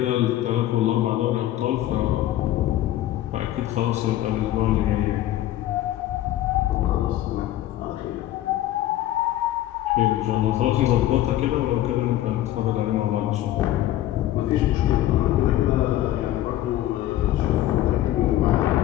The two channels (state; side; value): quieter; right; 13.8 dB